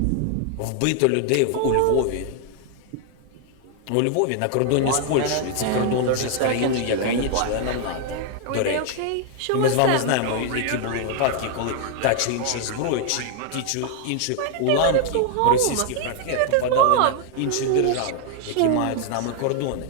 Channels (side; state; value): both; different; correlation 0.00